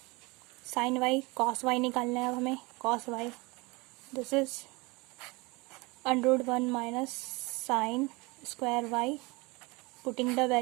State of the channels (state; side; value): quieter; left; 25.2 dB